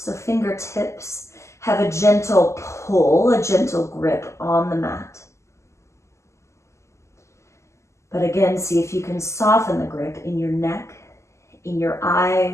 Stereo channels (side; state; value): right; late; 0.13 ms